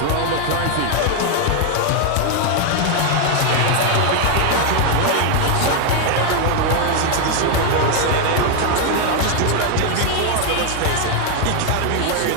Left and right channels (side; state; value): both; different; correlation 0.00